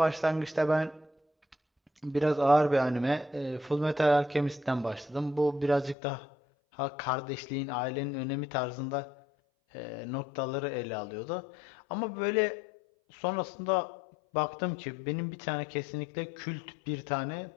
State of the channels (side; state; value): right; drops out; at 6.0 s